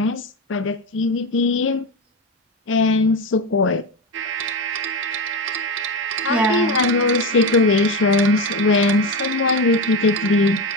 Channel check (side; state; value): both; normal; correlation 0.18